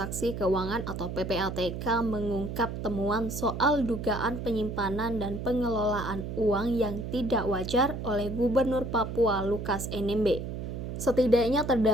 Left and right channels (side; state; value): right; noise; hum, 6 dB below the sound